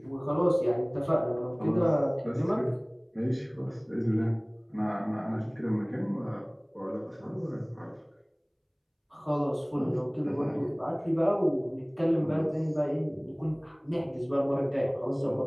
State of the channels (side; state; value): both; identical; correlation 1.00